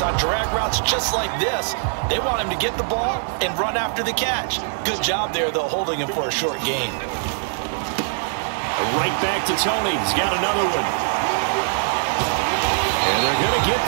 on drag routes just like this. They want him to get the ball and run after the catch. Good job there, though, holding him for a short gain. Right back to Tony. He's got another one. And they're going to get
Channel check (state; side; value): silent; left; 64 dB below the other